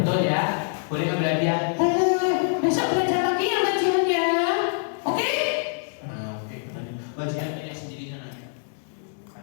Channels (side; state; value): right; silent; digital silence